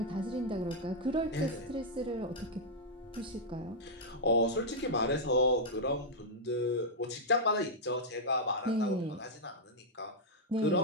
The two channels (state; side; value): normal; both; correlation -0.05